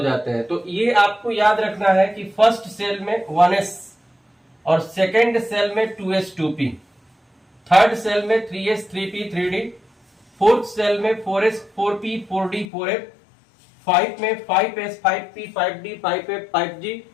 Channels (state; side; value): drops out; right; at 12.7 s